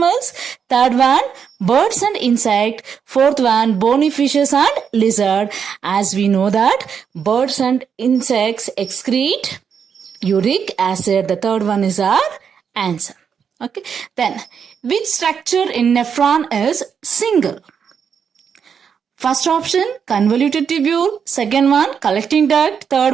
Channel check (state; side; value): quieter; left; 7.1 dB